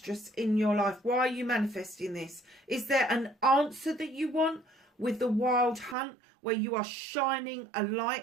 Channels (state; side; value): drops out; left; at 6.0 s